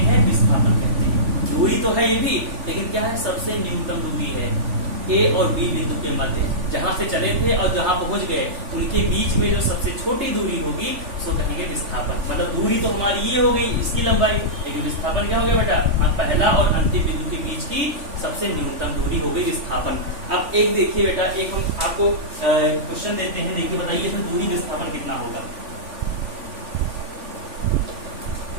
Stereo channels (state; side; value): late; left; 3.4 ms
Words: हैं, विस्थापन कहते हैं। दूरी तो है ये भी, लेकिन क्या है, सबसे न्यूनतम दूरी है ए और बी बिंदु के मध्य, जहां से चले थे और जहां पहुंच गए उनके बीच में जो सबसे छोटी दूरी होगी उसको कहेंगे विस्थापन। मतलब दूरी तो हमारी ये हो गई, इसकी लंबाई, लेकिन विस्थापन क्या हो गया बेटा, पहला और अंतिम बिंदु के बीच की सबसे न्यूनतम दूरी हो गई विस्थापन। अब एक देखिए बेटा, एक हम आपको क्वेश्चन देते हैं, देखिए बताइए इसमें दूरी विस्थापन कितना होगा।